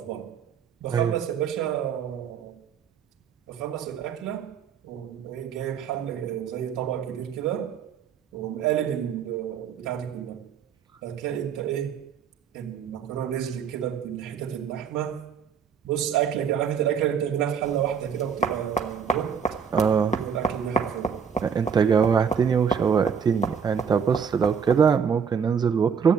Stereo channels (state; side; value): quieter; left; 6.9 dB